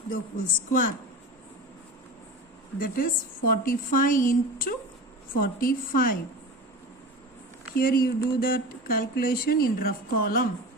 the whole square. That is 45 into 45. Here you do that calculation in rough column.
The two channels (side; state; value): both; normal; correlation 0.31